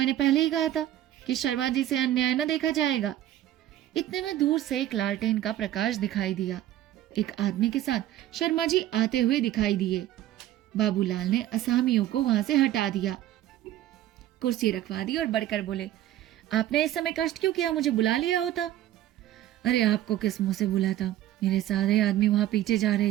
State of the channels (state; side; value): quieter; left; 13.2 dB